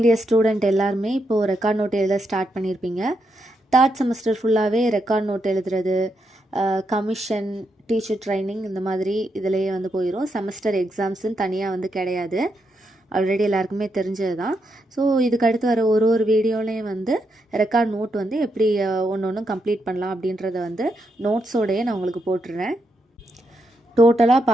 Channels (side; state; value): both; normal; correlation 0.81